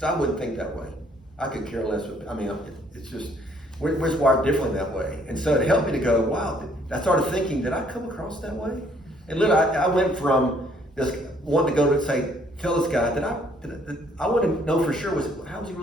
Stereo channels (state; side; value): normal; both; correlation 0.64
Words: I wouldn't think that way. I could care less. It's just we're just wired differently that way. And so it helped me to go, wow. I started thinking, did I come across that way? And literally, I went from this wanting to go to say, tell this guy that I want to know for sure how was he